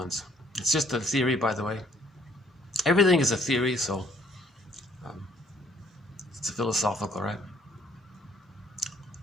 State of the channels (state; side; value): normal; both; correlation 0.63